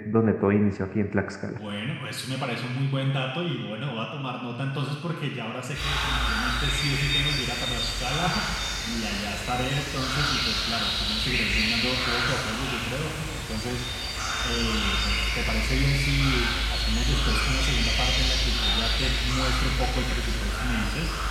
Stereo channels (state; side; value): identical; both; correlation 1.00